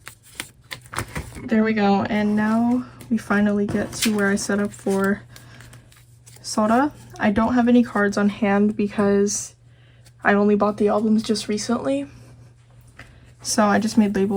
There we go, and now we finally get to where I set up for Soda. I don't have any cards on hand because I only bought the albums just recently, so I just made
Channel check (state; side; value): identical; both; correlation 1.00